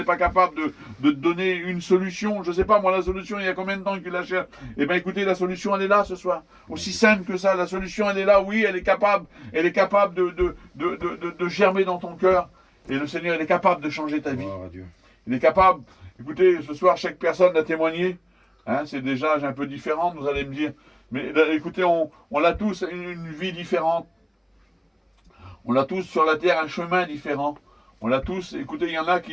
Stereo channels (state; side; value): identical; both; correlation 1.00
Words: pas capable de te donner une solution. Je ne sais pas, moi, la solution, il y a combien de temps qu'il la cherche? Eh bien, écoutez, la solution, elle est là ce soir. Aussi simple que ça, la solution, elle est là. Oui, elle est capable. Elle est capable de germer dans ton cœur. Et le Seigneur, il est capable de changer ta vie. Il est capable. Écoutez, ce soir, chaque personne a témoigné. Hein, c'est des âges un peu différents, vous allez me dire. Mais écoutez, on a tous une vie différente. On a tous sur la terre un chemin différent. On l'a tous. Écoutez, il y en a